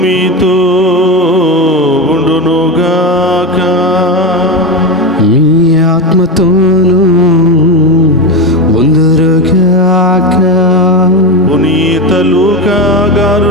మీతో ఉండునుగాక. మీ ఆత్మతోనూ ఉందురుగాక. పునీత లూకా గారు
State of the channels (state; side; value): normal; both; correlation 0.16